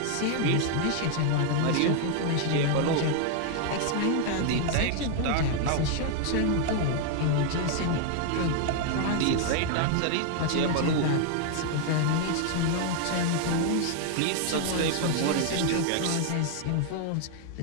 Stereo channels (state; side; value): different; both; correlation 0.00